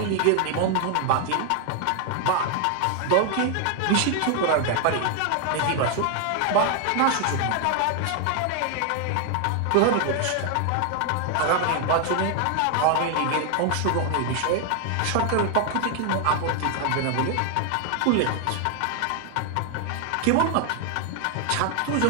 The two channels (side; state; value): both; different; correlation 0.00